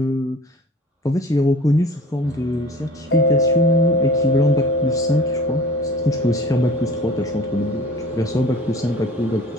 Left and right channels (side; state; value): both; normal; correlation 0.45